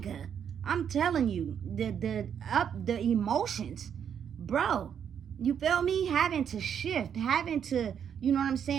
I'm telling you, the emotions, bro. You feel me? Having to shift, having to, you know what I'm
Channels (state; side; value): quieter; left; 8.2 dB